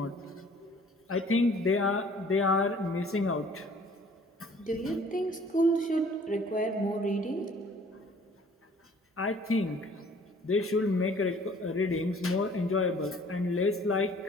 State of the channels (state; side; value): normal; both; correlation 0.54